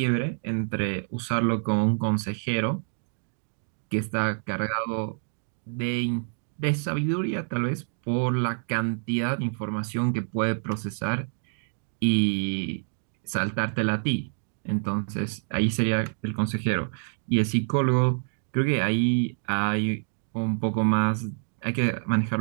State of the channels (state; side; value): silent; left; digital silence